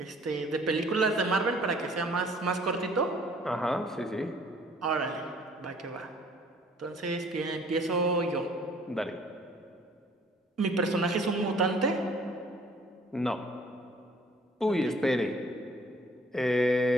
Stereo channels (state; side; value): normal; both; correlation 0.56